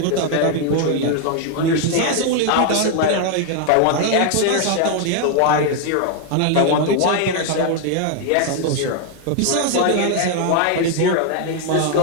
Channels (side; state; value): both; different; correlation 0.00